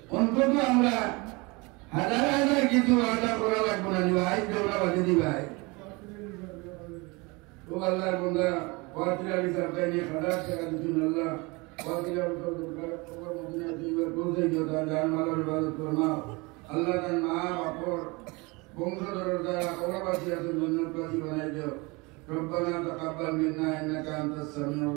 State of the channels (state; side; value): quieter; left; 26.2 dB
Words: অন্তত আমরা হাজার হাজার কিছু আদা করা লাগবে না ভাই দেওয়া বাজে দি ভাই তো আল্লাহর বন্দা वातिला सरकार ने खड़ा कर दी अल्लाह वातिला तो खबर मदीना दीवर बोलते जो था जान माला इबादत करना अल्लाह का नाम और वंशधर द्वारा कौरवासी जन्नत वासी बनाए जो ربنا تقبل منا إنك أنت السميع